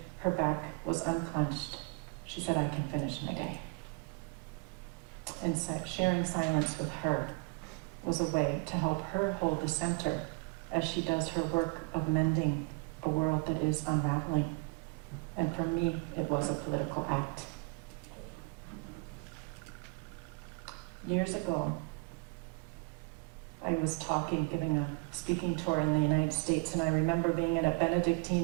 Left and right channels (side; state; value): left; quieter; 30.5 dB